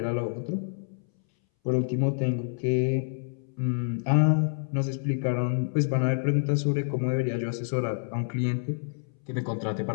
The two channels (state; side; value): silent; right; 60 dB below the other